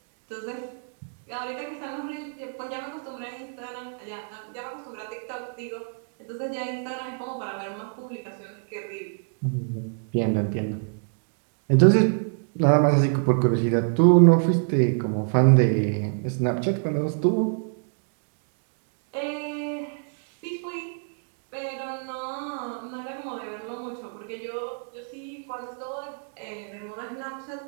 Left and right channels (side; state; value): left; silent; 60 dB below the other